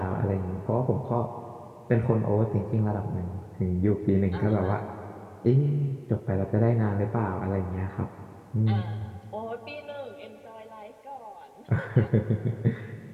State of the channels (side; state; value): both; identical; correlation 1.00